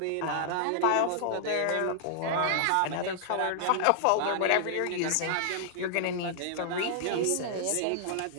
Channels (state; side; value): different; both; correlation -0.01